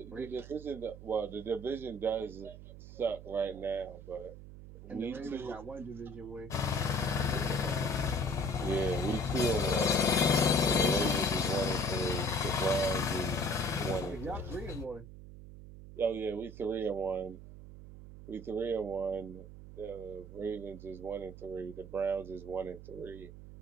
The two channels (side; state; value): right; noise; hum, 14 dB below the sound